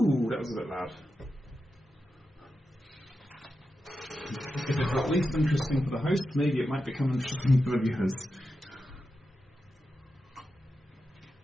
that was a bit loud. If it's at least interesting for the host, maybe it might become interesting for the viewers.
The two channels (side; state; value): both; normal; correlation 0.89